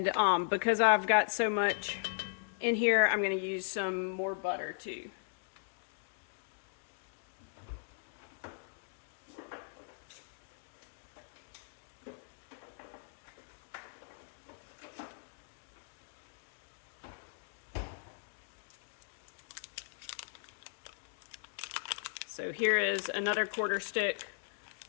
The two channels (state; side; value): silent; right; digital silence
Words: because I've got so much in here, I'm going to use some more butter too. So here is another 1/4 stick